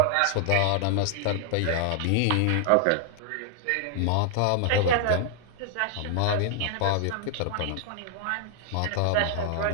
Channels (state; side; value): different; both; correlation 0.00